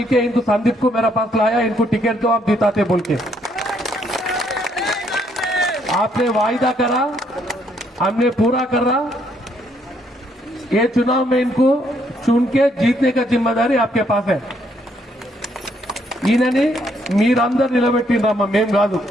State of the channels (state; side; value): normal; both; correlation 0.71